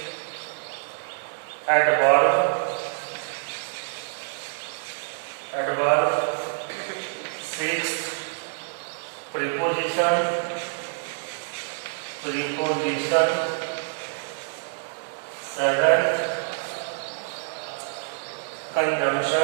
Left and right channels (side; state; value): left; silent; 61 dB below the other